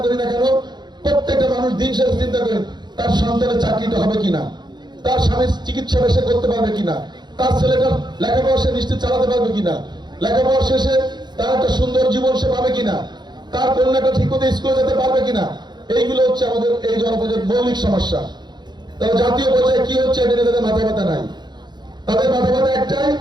করি না কেন, প্রত্যেকটা মানুষ দিন শেষে চিন্তা করেন তার সন্তানের চাকরিটা হবে কিনা, তার স্বামীর চিকিৎসাটা সে করতে পারবে কিনা, তার ছেলেটার লেখাপড়া সে নিশ্চিত চালাতে পারবে কিনা, লেখাপড়া শেষে তার একটা সুন্দর জীবন সে পাবে কিনা, তার কন্যাটা ঠিক মতো স্কুলে যেতে পারবে কিনা। এইগুলো হচ্ছে আমাদের এই জনপদের মৌলিক সমস্যা। তারা জাতীয় পর্যায়ে কি হচ্ছে এটা তাদের মাথা ব্যথা নাই। তাদের মাথা ব্যথা একটাই,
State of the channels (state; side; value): late; left; 0.21 ms